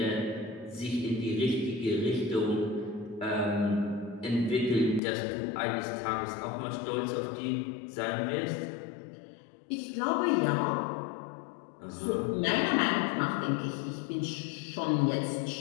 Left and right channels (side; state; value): right; drops out; at 5.0 s